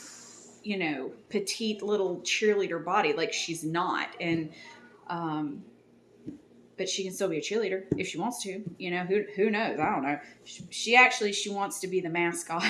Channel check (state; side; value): identical; both; correlation 1.00